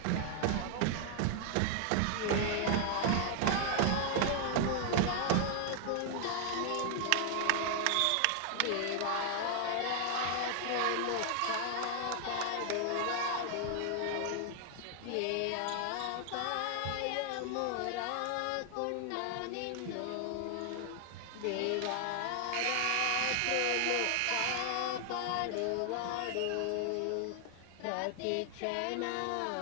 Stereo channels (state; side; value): different; both; correlation 0.00